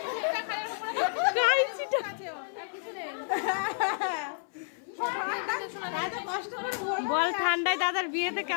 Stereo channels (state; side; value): silent; right; 55 dB below the other